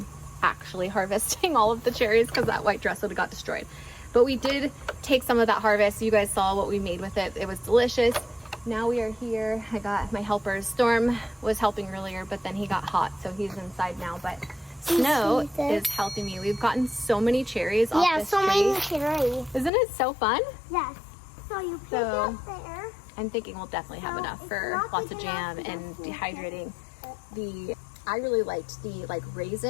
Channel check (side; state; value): right; drops out; at 19.7 s